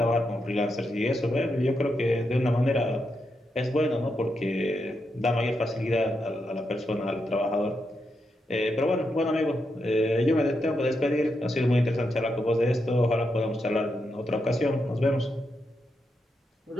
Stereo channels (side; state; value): both; normal; correlation 0.84